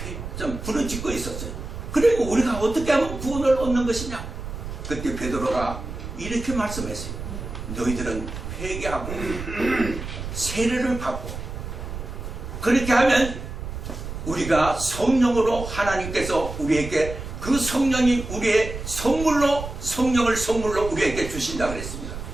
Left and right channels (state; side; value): noise; right; rumble, 8 dB below the sound